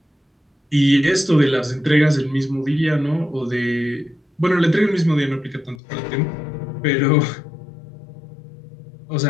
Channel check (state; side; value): drops out; right; at 5.8 s